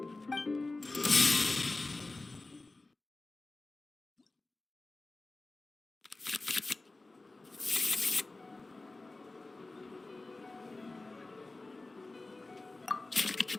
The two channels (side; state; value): right; quieter; 3.2 dB